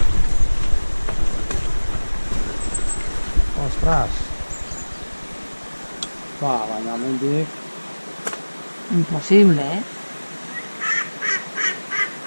Ostras. Va, bañamente. Imposible, ¿eh?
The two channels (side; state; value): both; inverted; correlation -1.00